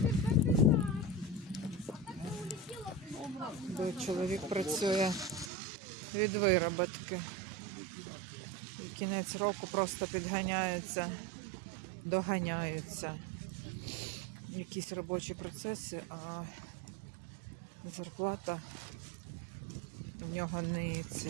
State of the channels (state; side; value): drops out; left; at 5.5 s